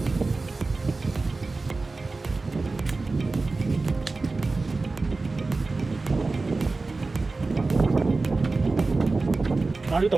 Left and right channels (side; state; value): left; quieter; 3.6 dB